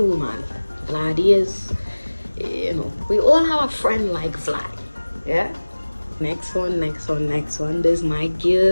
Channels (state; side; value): inverted; both; correlation -1.00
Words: man. Vlad is, you know, we all have a friend like Vlad. Yeah. Next one. This is my